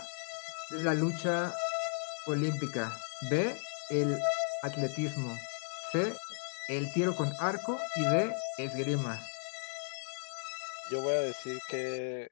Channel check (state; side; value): silent; right; digital silence